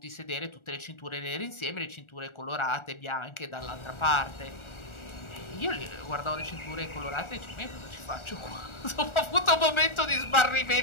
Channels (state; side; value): late; right; 1.4 ms